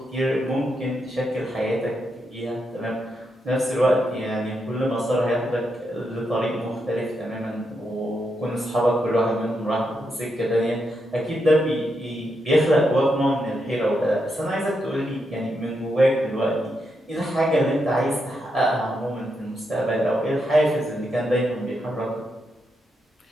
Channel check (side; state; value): both; normal; correlation 0.83